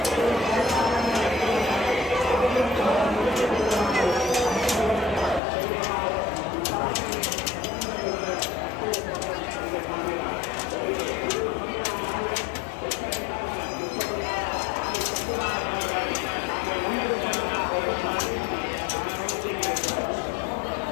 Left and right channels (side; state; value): right; drops out; at 5.4 s